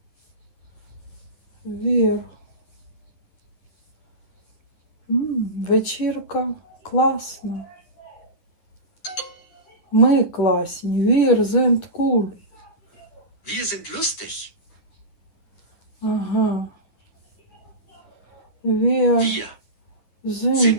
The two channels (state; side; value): late; right; 10 ms